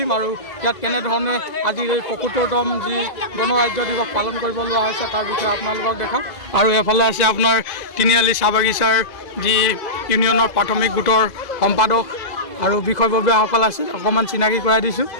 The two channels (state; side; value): late; right; 2.0 ms